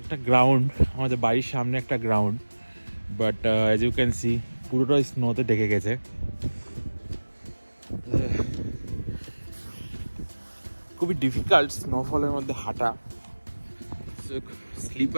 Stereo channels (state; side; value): inverted; both; correlation -1.00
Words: গ্রাউন্ড, আমাদের বাড়ির সামনে একটা ground, but as you can see পুরোটাই স্নোতে ঢেকে গেছে। খুবই ডিফিকাল্ট স্নোফলের মধ্যে হাঁটা,